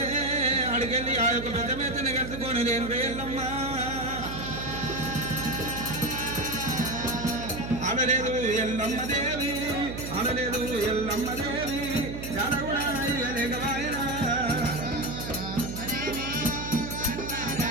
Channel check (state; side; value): noise; right; hum, 8 dB below the sound